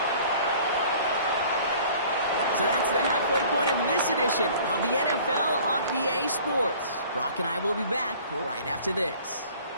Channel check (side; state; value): both; inverted; correlation -0.50